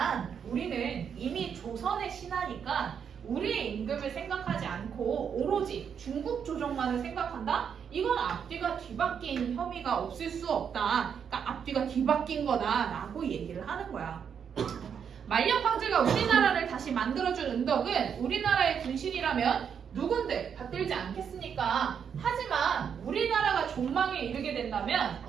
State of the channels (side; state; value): left; quieter; 7.4 dB